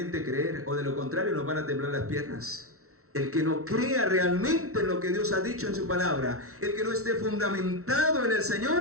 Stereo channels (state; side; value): late; left; 0.63 ms